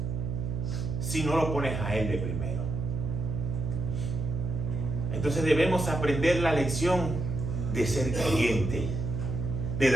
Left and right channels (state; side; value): noise; right; hum, 3 dB below the sound